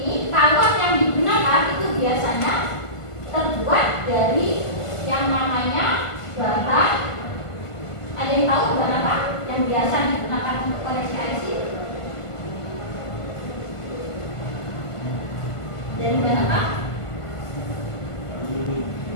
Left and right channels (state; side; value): late; right; 1.5 ms